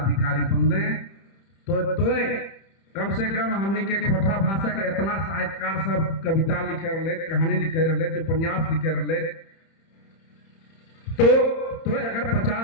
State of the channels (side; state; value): right; late; 30 ms